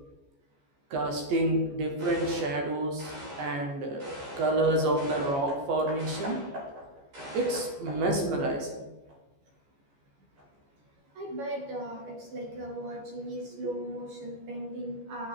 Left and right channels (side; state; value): left; late; 14 ms